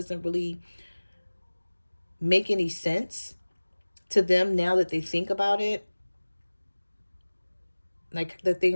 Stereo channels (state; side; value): inverted; both; correlation -1.00